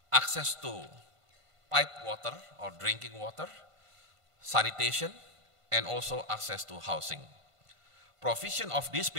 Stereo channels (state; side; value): late; left; 1.5 ms